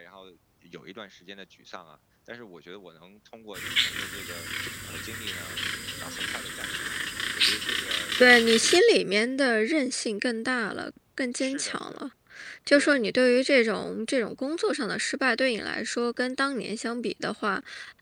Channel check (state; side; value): identical; both; correlation 1.00